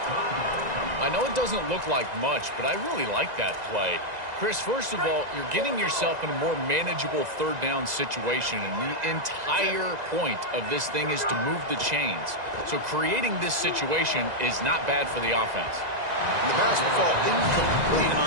I know it doesn't look like much, but I really like that play. Chris, first of all, you're getting yourself in a more manageable third down situation, and the entire point of this thing is to move the chains. So creating this situation is not bad for the offense. And the pass will fall incomplete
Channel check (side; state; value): left; late; 2.0 ms